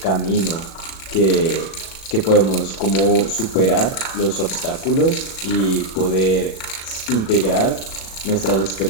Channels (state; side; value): late; right; 37 ms